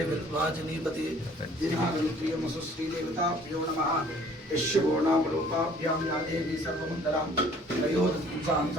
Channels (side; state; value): both; normal; correlation 0.55